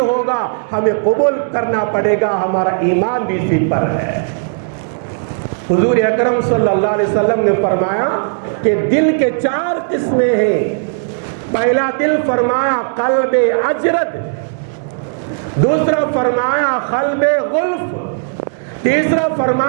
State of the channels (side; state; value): left; silent; digital silence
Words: ہوگا، ہمیں قبول کرنا پڑے گا، ہمارا ایمان بھی اسی پر ہے۔ حضور اکرم صلی اللہ علیہ وسلم نے فرمایا کہ دل کے 4 قسمیں ہیں۔ پہلا دل فرمایا قلب اجرد، دوسرا فرمایا قلب غلف، تیسرا